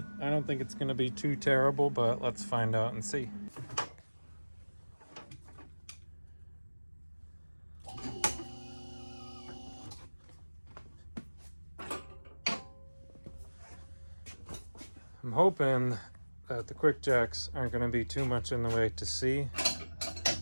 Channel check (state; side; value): inverted; both; correlation -1.00